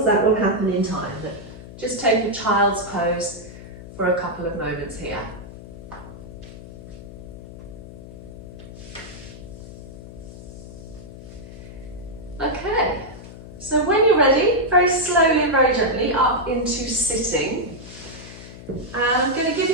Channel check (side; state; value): left; noise; hum, 15 dB below the sound